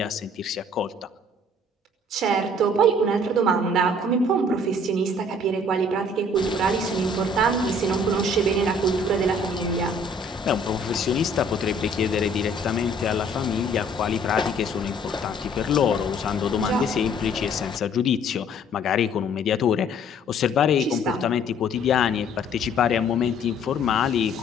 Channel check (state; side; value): normal; both; correlation 0.57